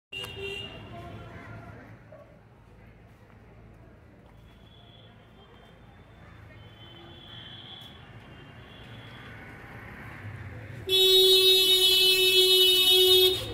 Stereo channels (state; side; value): identical; both; correlation 1.00